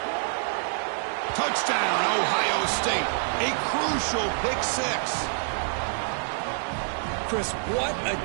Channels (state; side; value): silent; left; digital silence